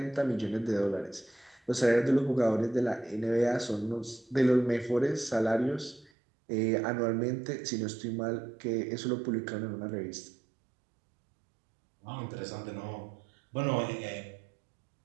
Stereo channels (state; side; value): drops out; left; at 6.1 s